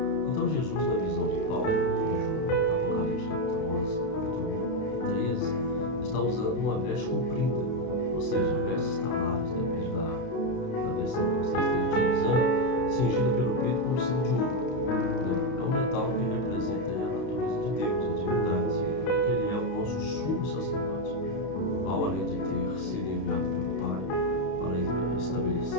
Então Jesus, na visão de Paulo, em Apocalipse capítulo 11, capítulo 1 e 13, está usando uma veste comprida, ou seja, vestes talares, depende da versão que você esteja utilizando, cingida pelo peito com um símbolo de ouro. É um metal que representa a natureza de Deus, a divindade. Significa que ele é o nosso sumo sacerdote, o qual, além de ter sido enviado pelo Pai para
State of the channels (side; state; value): right; late; 31 ms